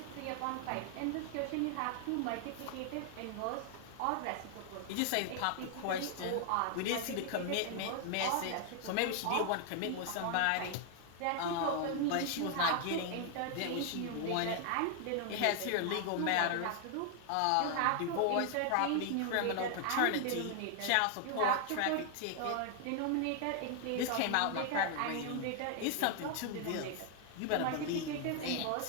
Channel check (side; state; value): both; different; correlation 0.00